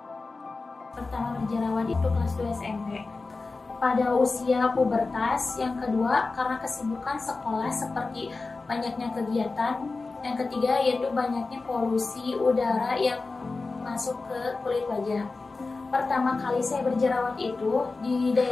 Pertama berjerawat itu kelas 2 SMP. Pada usia pubertas. Yang kedua karena kesibukan sekolah seperti banyaknya kegiatan. Yang ketiga yaitu banyaknya polusi udara yang masuk ke kulit wajah. Pertama kali saya berjerawat itu di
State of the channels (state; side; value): quieter; right; 3.8 dB